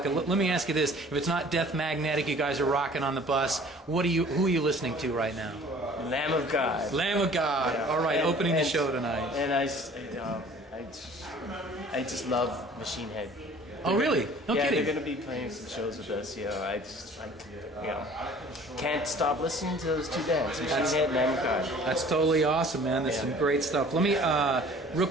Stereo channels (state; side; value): normal; both; correlation 0.49